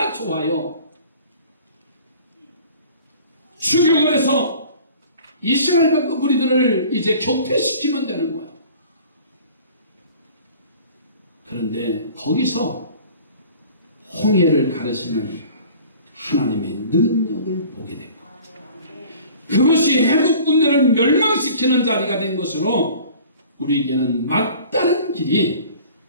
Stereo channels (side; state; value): both; inverted; correlation -0.47